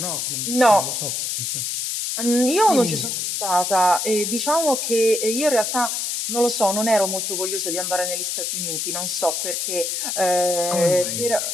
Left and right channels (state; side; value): noise; left; hiss, 2 dB below the sound